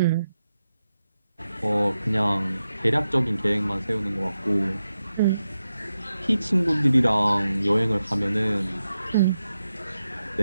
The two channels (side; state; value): both; inverted; correlation -0.89